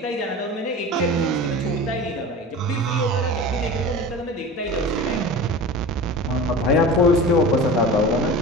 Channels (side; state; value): both; normal; correlation 0.33